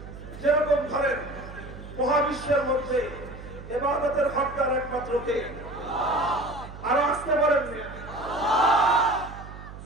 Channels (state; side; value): noise; right; hum, 14 dB below the sound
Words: যেরকম ধরেন মহাবিশ্বের মধ্যে ইবাদতের হকদার একমাত্র কে? আরো আসতে পারেন না,